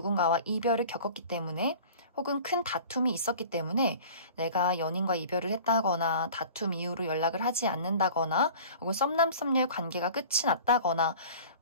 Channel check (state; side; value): inverted; both; correlation -0.42